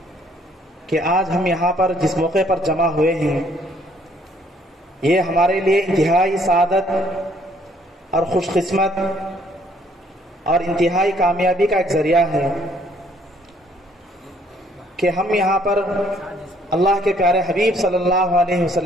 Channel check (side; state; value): both; normal; correlation 0.64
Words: کہ آج ہم یہاں پر جس موقع پر جمع ہوئے ہیں، یہ ہمارے لیے انتہائی سعادت اور خوش قسمت اور انتہائی کامیابی کا ایک ذریعہ ہے کہ ہم یہاں پر اللہ کے پیارے حبیب صلی اللہ علیہ